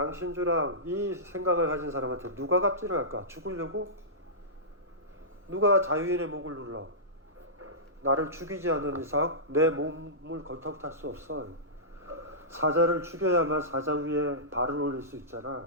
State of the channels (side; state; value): both; normal; correlation -0.18